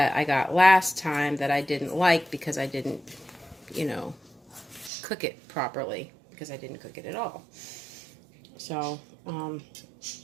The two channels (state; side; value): drops out; left; at 4.9 s